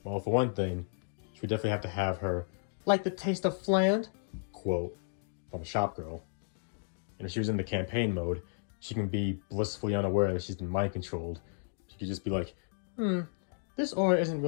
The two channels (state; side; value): silent; right; digital silence